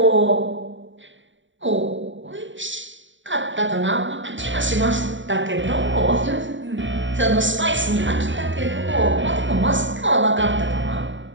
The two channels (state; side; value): late; left; 0.55 ms